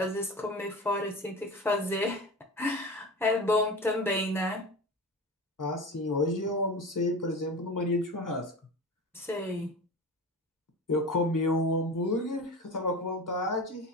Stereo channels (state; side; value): normal; both; correlation 0.30